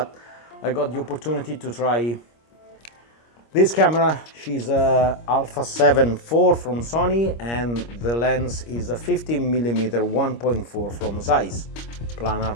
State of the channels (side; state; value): right; late; 25 ms